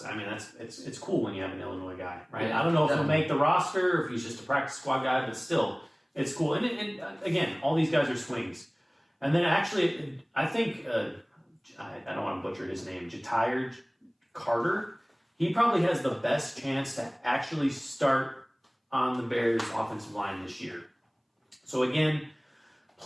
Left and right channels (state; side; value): identical; both; correlation 1.00